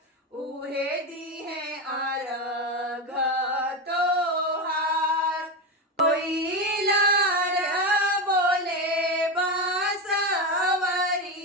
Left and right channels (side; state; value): both; normal; correlation 0.15